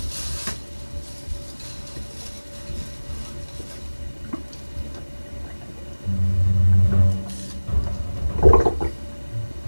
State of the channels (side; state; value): both; inverted; correlation -1.00